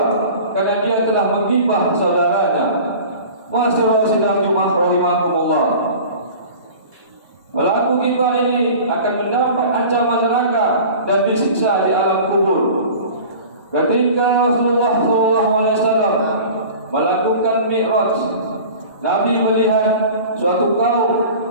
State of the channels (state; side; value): inverted; both; correlation -0.40